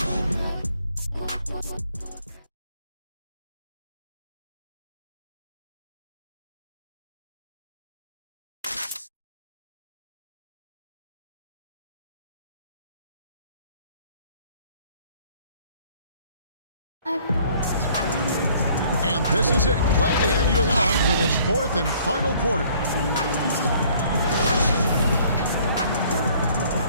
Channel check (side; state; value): both; inverted; correlation -0.58